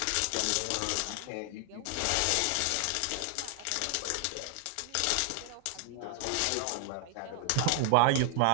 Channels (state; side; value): different; both; correlation 0.00